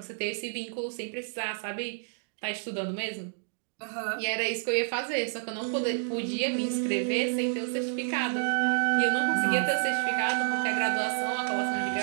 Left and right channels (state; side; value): silent; left; digital silence